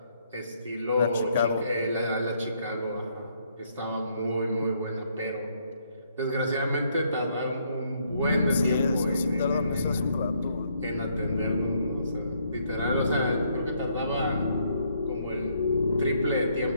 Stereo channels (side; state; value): both; inverted; correlation -0.70